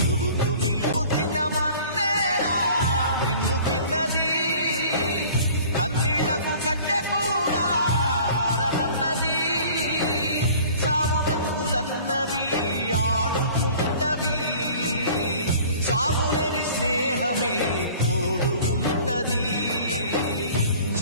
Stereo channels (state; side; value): inverted; both; correlation -0.47